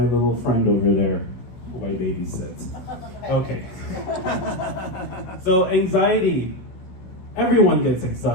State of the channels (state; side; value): late; right; 16 ms